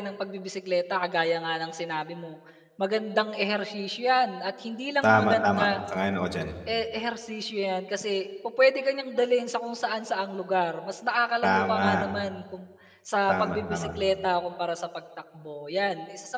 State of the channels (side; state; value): both; identical; correlation 1.00